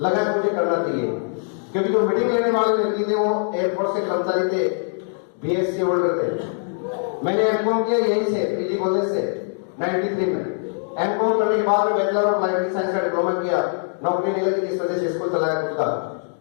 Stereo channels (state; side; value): silent; right; digital silence